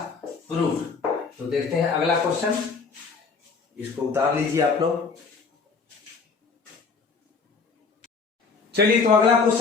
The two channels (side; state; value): right; quieter; 4.8 dB